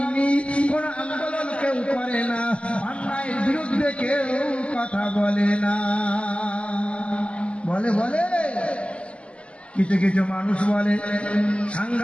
কোন আন্দোলন কেউ করে না, অন্যায়ের বিরুদ্ধে কেউ কথা বলে না। বলে কিছু কিছু মানুষ বলে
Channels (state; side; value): late; right; 0.057 ms